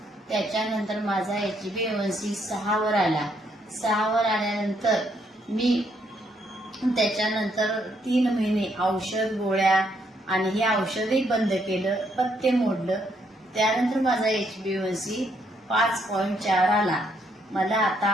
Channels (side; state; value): both; normal; correlation 0.73